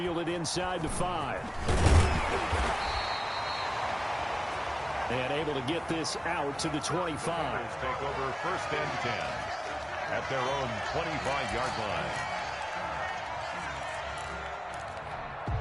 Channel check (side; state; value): both; identical; correlation 1.00